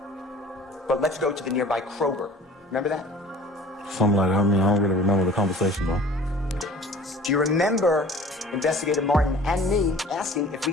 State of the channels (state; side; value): normal; both; correlation 0.46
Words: but let's go to the nearby Kroger. Remember that? Something like that. I mean, I don't really remember the conversation though. Do you remember Investigator Martin and me asking if we